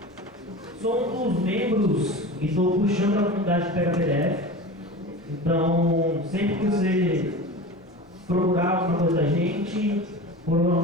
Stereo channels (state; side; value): normal; both; correlation 0.32